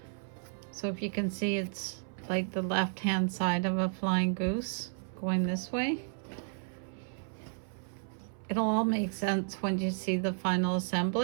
So if you can see, it's like the left hand side of a flying goose going this way. It'll all make sense when you see the final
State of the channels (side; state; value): left; silent; 56 dB below the other